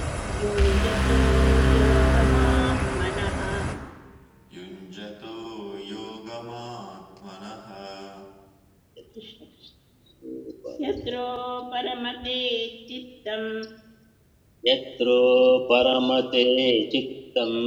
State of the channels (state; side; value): identical; both; correlation 1.00